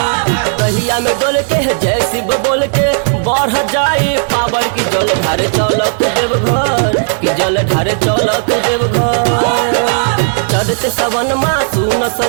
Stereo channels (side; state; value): left; silent; digital silence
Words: कहिया में डोल के जय शिव बोल के बढ़ जाए पावर की जल ढारे चल तू देवघर की जल ढारे चल तू देवघर चढ़त सवन माँ सुन